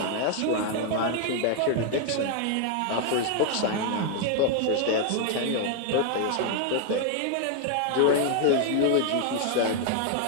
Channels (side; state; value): both; different; correlation 0.00